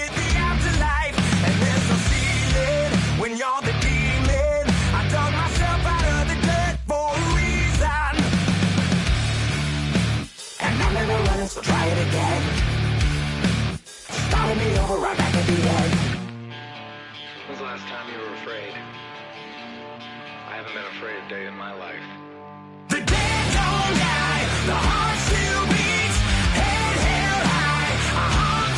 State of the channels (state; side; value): identical; both; correlation 1.00